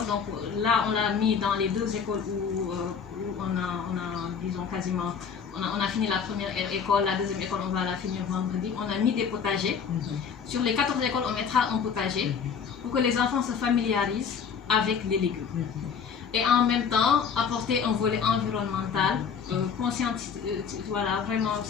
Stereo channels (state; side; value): quieter; right; 6.6 dB